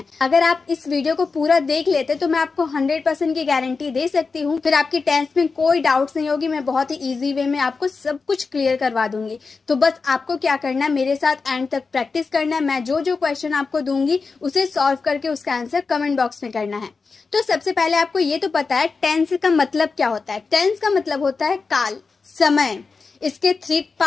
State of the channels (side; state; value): right; quieter; 4.6 dB